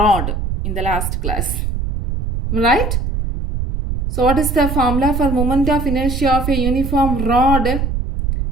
in the last class. Right? So what is the formula for moment of inertia of a uniform rod?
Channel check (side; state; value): right; noise; rumble, 2 dB below the sound